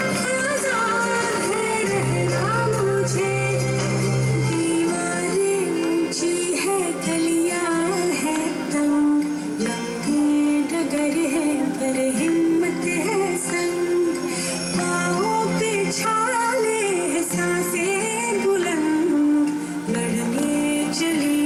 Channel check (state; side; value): identical; both; correlation 1.00